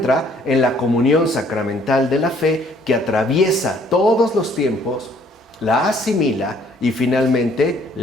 en la comunión sacramental de la fe que atraviesa todos los tiempos, la asimila y finalmente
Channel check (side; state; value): both; normal; correlation 0.62